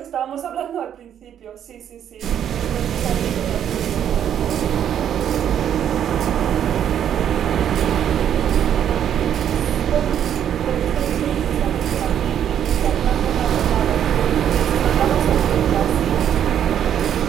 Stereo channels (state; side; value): quieter; left; 9.6 dB